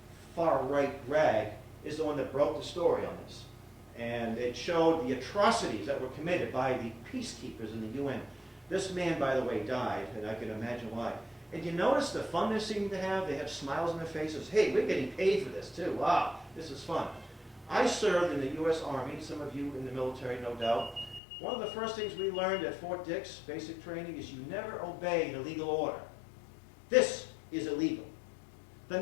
far-right rag, is the one that broke the story on this. And it showed the atrocities that were committed by the peacekeepers in the UN. This man, by the way, died, and I can imagine why. And you notice the fun they seem to have? They have smiles on their faces. Hey, we're getting paid for this, too. Wow, this is fun. I served in the U.S. Army, some of you in the military, no doubt. One of the first things we learned at Fort Dix, basic training, is you never obey the legal order. This is illegal. The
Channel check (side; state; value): right; drops out; at 21.2 s